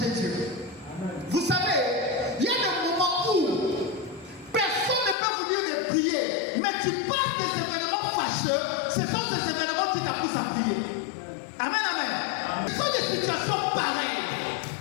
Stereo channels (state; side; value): drops out; right; at 5.2 s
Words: Dieu. Vous savez, il y a des moments où personne ne peut vous dire de prier, mais tu passes des événements fâcheux, ce sont ces événements qui t'appuient à prier. Amen, amen. Ce sont des situations pareilles